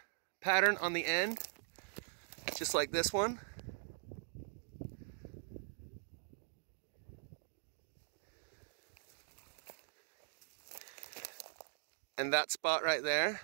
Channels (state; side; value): silent; left; digital silence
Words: pattern on the end, just like this one. And that spot right there.